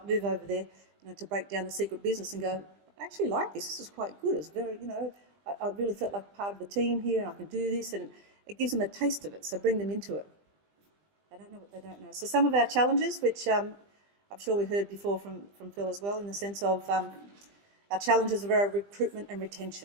move over there, to break down the secret business and go, I actually like this is quite good. It's very, I really felt like part of the team here and I can do this, and it gives them a taste of it, so bring them into it. They don't know what they don't know. So some of our challenges, which I'm sure we heard before from Phil as well, in the sense of our challenges of our recruitment and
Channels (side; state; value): left; late; 20 ms